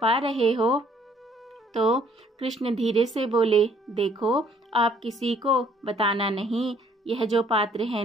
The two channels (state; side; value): normal; both; correlation 0.62